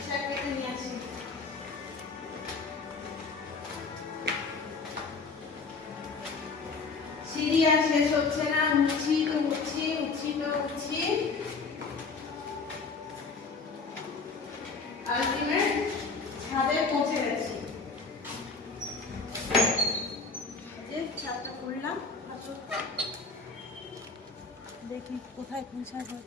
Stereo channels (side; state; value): right; quieter; 4.4 dB